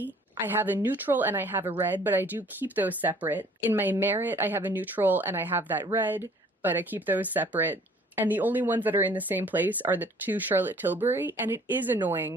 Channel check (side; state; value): both; normal; correlation 0.55